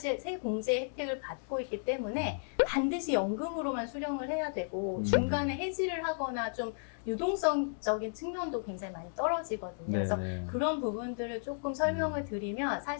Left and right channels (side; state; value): right; silent; digital silence